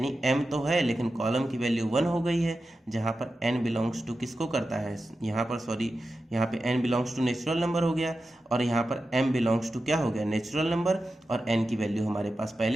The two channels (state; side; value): normal; both; correlation 0.92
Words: m तो है लेकिन कॉलम की वैल्यू 1 हो गई है, जहाँ पर n बिलोंग्स टू किसको करता है, यहाँ पर सॉरी यहाँ पे n belongs to natural number हो गया और यहाँ पर m बिलोंग्स टू क्या हो गया नेचुरल नंबर, और n की वैल्यू हमारे पास